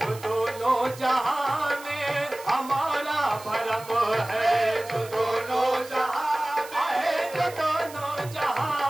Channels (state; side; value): noise; right; hiss, 17 dB below the sound